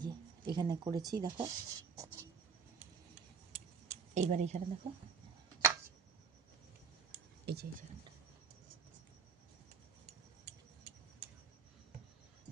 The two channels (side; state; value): left; quieter; 5.7 dB